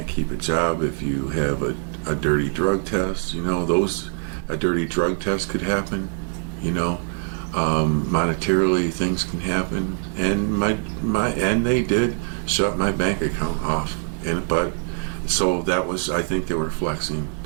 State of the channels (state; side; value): silent; left; 59 dB below the other